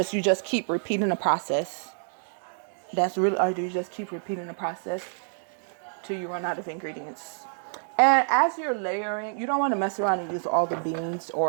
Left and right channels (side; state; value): left; silent; digital silence